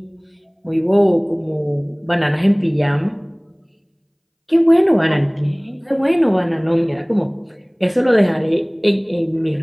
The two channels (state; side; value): identical; both; correlation 1.00